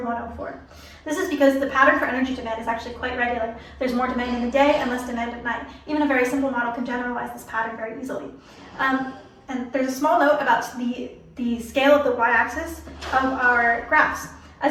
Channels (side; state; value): both; identical; correlation 1.00